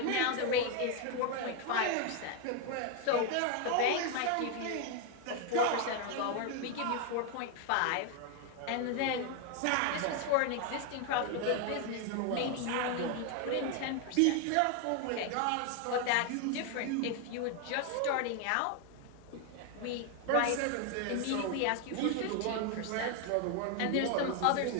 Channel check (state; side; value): different; both; correlation 0.01